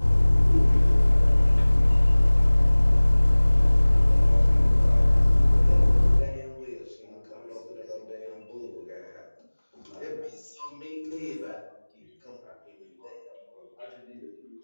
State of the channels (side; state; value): both; inverted; correlation -1.00